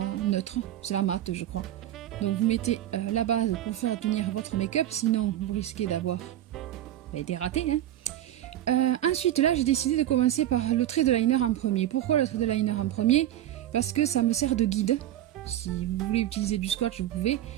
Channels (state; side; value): quieter; left; 12.5 dB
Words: neutre, c'est la mate je crois. Donc vous mettez la base pour faire tenir votre make-up, sinon vous risquez d'avoir des ratés. Ensuite là j'ai décidé de commencer par le trait de liner en premier. Pourquoi le trait de liner en premier? Parce que ça me sert de guide. Si vous voulez utiliser du swatch vous pouvez,